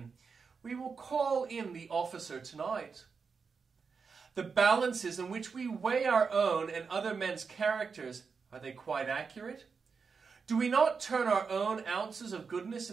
We will call in the officer tonight. The balances in which we weigh our own and other men's characters, are they quite accurate? Do we not turn our own ounces of goodness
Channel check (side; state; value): left; quieter; 5.3 dB